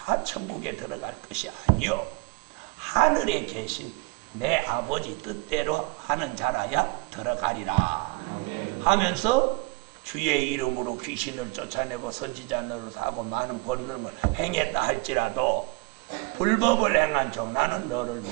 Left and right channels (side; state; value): left; quieter; 27.1 dB